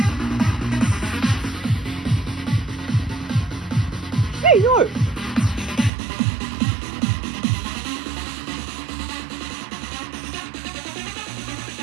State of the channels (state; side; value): drops out; left; at 5.9 s